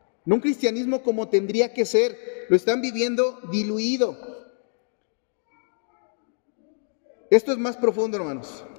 no un cristianismo como tendría que ser, lo están viviendo diluido. Esto es más profundo, hermanos.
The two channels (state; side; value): silent; right; 62 dB below the other